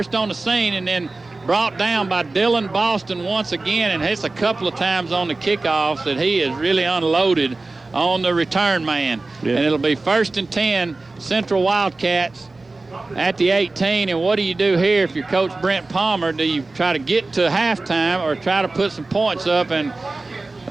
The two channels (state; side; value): quieter; left; 3.3 dB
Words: on the scene and then brought down by Dylan Boston once again, and it's a couple of times on the kickoffs that he has really unloaded on the return man. Yeah. And it'll be 1st and 10, Central Wildcats at the 18. And what do you do here if you're Coach Brent Palmer? Do you try to get to halftime or try to put some points up? And